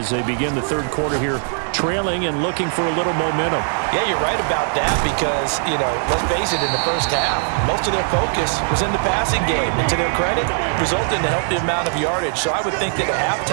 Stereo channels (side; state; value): left; silent; 55 dB below the other